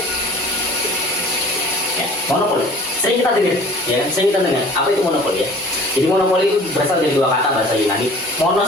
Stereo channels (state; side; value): normal; both; correlation 0.47